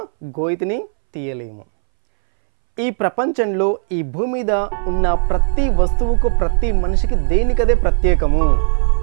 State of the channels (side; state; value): left; silent; 65 dB below the other